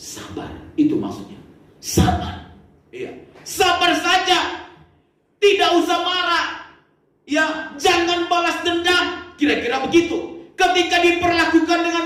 itu maksudnya. Sabar. Iya, sabar saja. Tidak usah marah. Ya, jangan balas dendam. Kira-kira begitu. Ketika diperlakukan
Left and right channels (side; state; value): both; identical; correlation 1.00